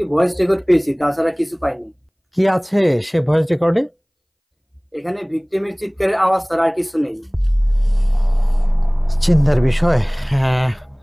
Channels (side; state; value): both; identical; correlation 1.00